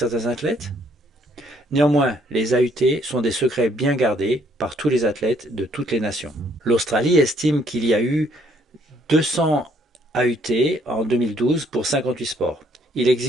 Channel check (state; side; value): normal; both; correlation 0.66